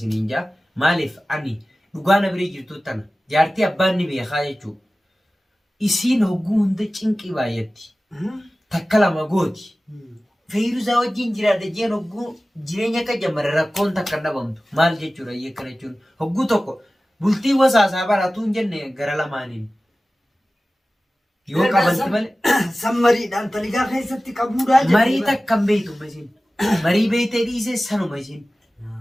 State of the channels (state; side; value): normal; both; correlation 0.96